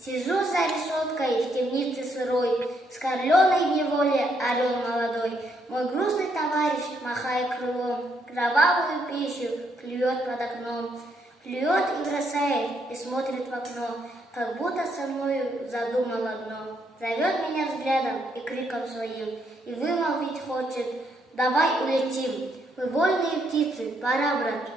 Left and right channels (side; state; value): both; normal; correlation 0.74